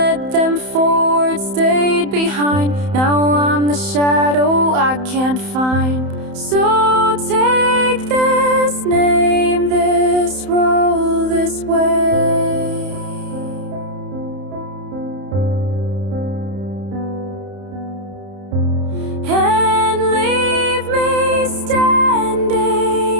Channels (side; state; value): left; late; 31 ms